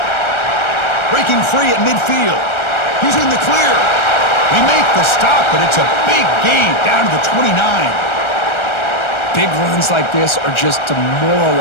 Breaking free at midfield. He's in the clear. They make the stop, but it's a big gain down to the 29. Big runs like this are just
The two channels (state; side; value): late; right; 1.3 ms